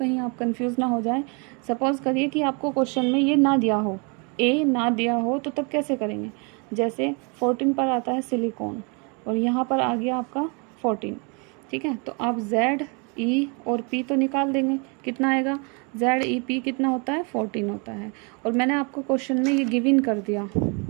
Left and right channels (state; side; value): quieter; left; 33.4 dB